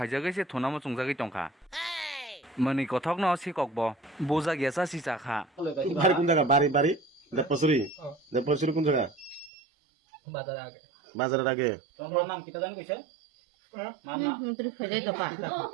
se thunamo chungjagoi tongkha mani kothok no sikok bo boja gesa si chakha বাড়ি কোন জায়গা বাড়ি দেবপসুরি কোন জায়গা বাজারের আগে তোমার নাম কিটা জানি কইছে মার নাম মন্ত্রী ফেজাই কাপা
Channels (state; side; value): drops out; left; at 9.5 s